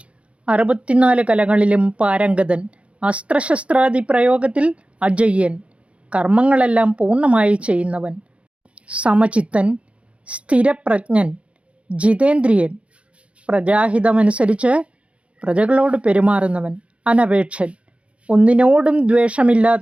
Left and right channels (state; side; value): late; left; 0.061 ms